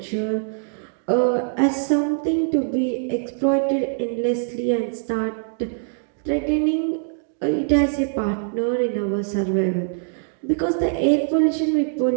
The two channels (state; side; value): silent; left; digital silence